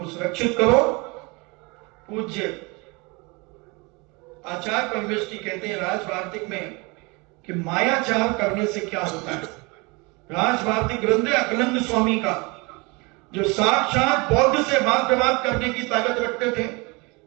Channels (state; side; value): quieter; left; 27.4 dB